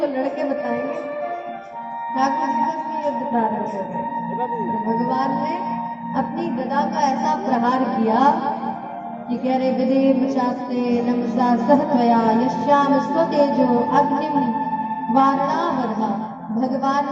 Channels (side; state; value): both; identical; correlation 1.00